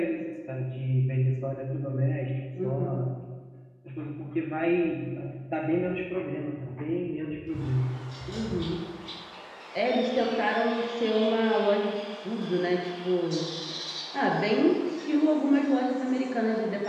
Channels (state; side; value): identical; both; correlation 1.00